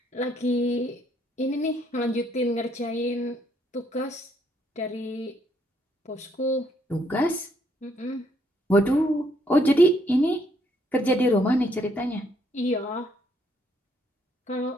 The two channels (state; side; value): normal; both; correlation 0.70